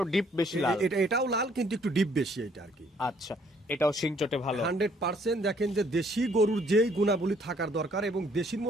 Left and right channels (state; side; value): normal; both; correlation 0.64